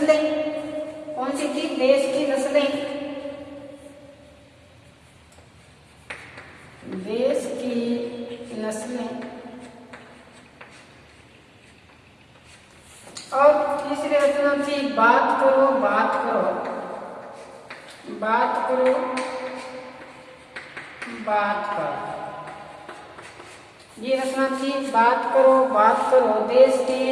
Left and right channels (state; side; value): identical; both; correlation 1.00